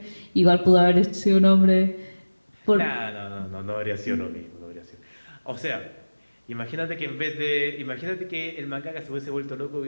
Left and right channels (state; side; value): inverted; both; correlation -1.00